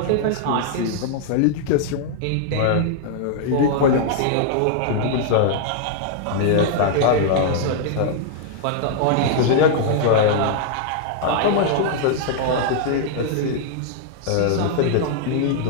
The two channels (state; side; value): different; both; correlation -0.01